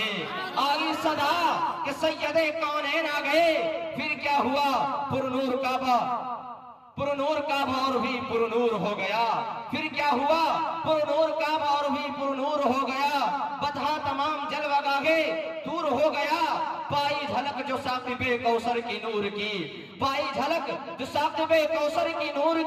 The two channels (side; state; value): both; identical; correlation 1.00